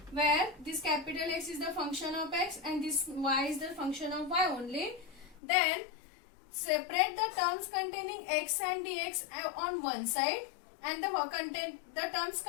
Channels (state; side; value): drops out; right; at 5.4 s